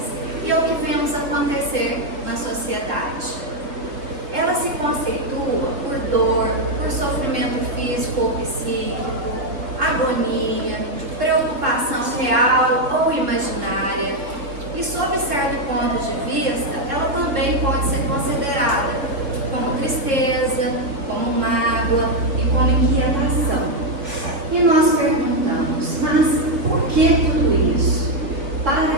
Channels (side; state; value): left; late; 3.8 ms